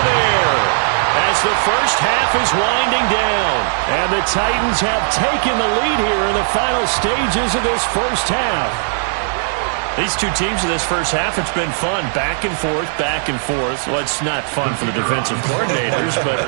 there as the first half is winding down. And the Titans have taken the lead here in the final stages of this first half. These two teams in this first half, it's been fun. Back and forth, back and forth. Well, it's not fun for the defensive coordinators, but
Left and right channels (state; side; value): silent; left; digital silence